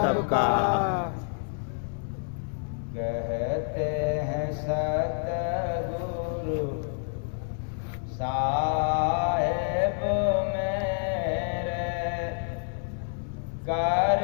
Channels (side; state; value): right; silent; digital silence